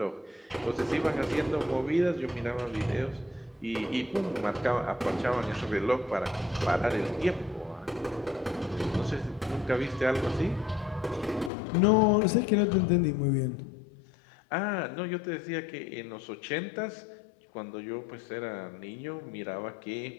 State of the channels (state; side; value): drops out; right; at 11.5 s